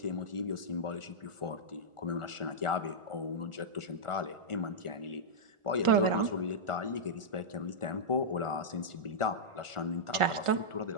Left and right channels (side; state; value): left; late; 1.4 ms